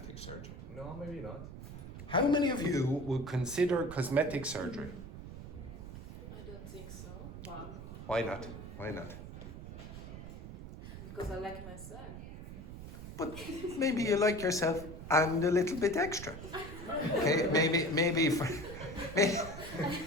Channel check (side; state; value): right; noise; rumble, 11 dB below the sound